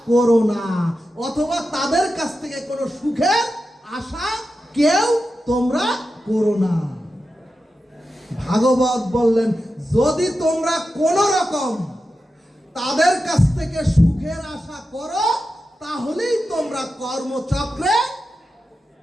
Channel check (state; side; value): normal; both; correlation 0.91